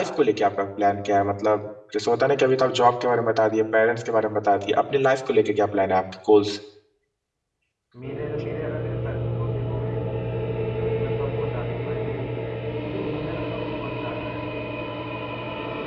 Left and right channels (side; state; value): both; identical; correlation 1.00